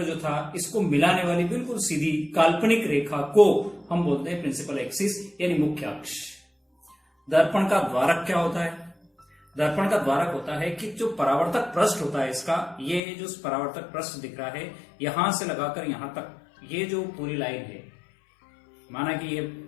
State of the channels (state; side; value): drops out; right; at 13.0 s